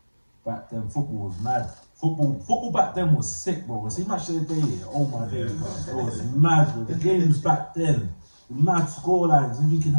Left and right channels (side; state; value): both; inverted; correlation -1.00